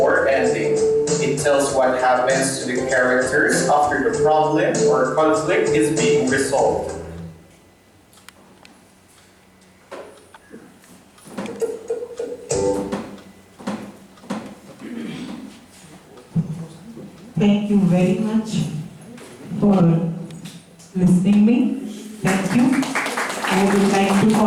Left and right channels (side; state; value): both; identical; correlation 1.00